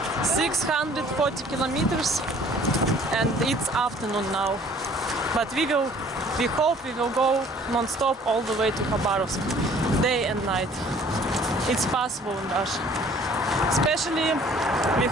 640 kilometers, and it's afternoon now. But we hope we will go non-stop all the way to Khabarovsk, day and night. It's possible in Russia. Especially we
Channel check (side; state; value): both; normal; correlation 0.54